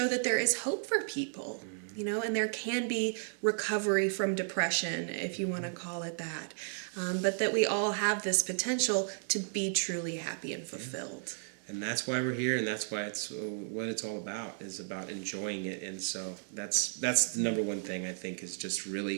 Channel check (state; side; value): silent; left; digital silence